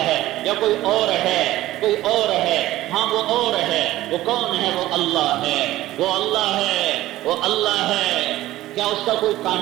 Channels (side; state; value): left; quieter; 15.7 dB